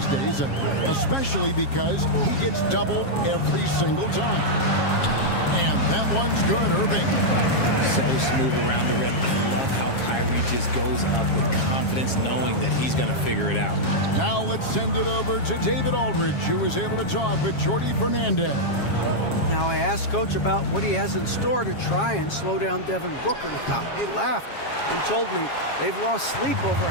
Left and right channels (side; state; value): right; late; 7.3 ms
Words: days, especially because he gets doubled every single time. And that one's good, Irving. So smooth around the rim. I love how Kyrie just goes up with confidence knowing that he's going to figure it out. Now let's send it over to David Aldridge, who was able to talk with Jordy Fernandez. Now I asked Coach about what he has in store to try and slow down Devin Booker. Now, he laughed and told me they've lost sleep over